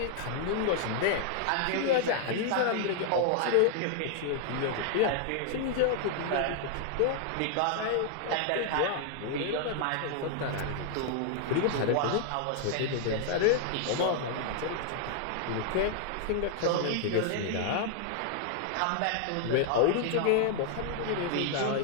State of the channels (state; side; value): different; both; correlation 0.00